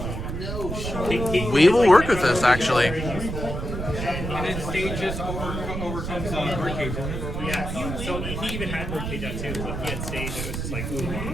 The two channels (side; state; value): right; noise; rumble, 5 dB below the sound